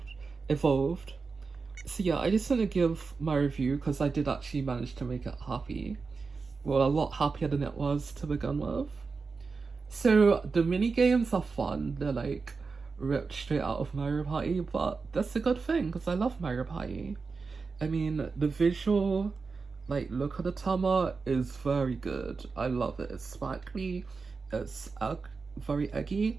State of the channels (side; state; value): left; quieter; 4.6 dB